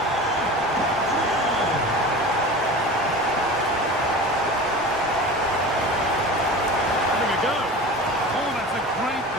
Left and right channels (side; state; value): both; normal; correlation 0.34